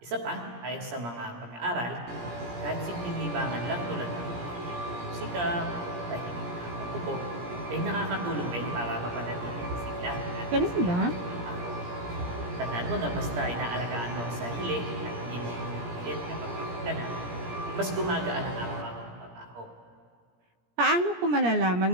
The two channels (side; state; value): left; late; 17 ms